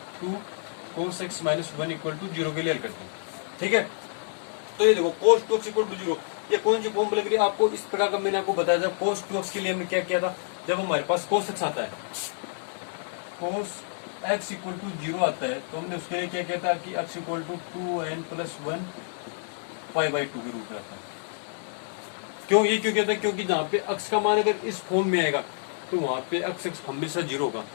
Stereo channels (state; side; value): silent; right; digital silence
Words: 2 cos x minus 1 equal to 0 के लिए हल करते हैं। ठीक है, तो ये देखो cos 2x इक्वल टू 0, ये कौन सी फॉर्म लग रही है आपको, इस प्रकार का मैंने आपको बताया था। cos 2x के लिए हमने क्या किया था, जब हमारे पास cos x आता है, cos x इक्वल टू 0 आता है, तो हमने उसके लिए क्या किया था कि x equal to 2n plus 1 pi by 2 के रूप में आता है। क्यों ये क्यों कहता है, क्योंकि जहाँ पे x का मान अगर इस फॉर्म में आएगा तो वहाँ पे x हमेशा 0 होगा,